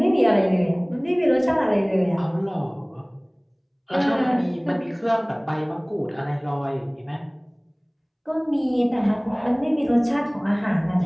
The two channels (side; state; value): both; identical; correlation 1.00